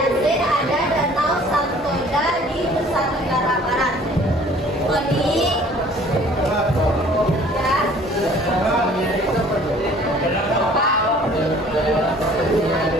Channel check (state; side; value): normal; both; correlation 0.53